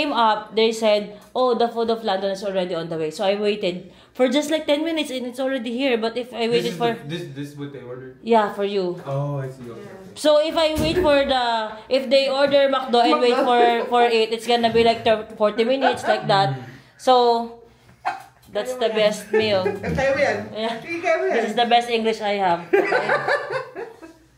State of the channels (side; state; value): both; identical; correlation 1.00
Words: up, they said, oh, the food of London is already on the way. So I waited for just like 10 minutes and it's already here. But if I waited This is what they ordered? Yeah, for you. Oh, I see. Okay. So if I wait if they order McDo and wait for it, it's gonna be like 40 minutes, like that. So, that's the best meal. Yeah. This is the best English I have. Okay?